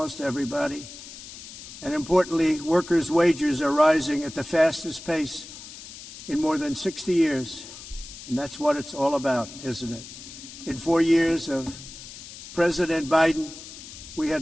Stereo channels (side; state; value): left; noise; hiss, 14 dB below the sound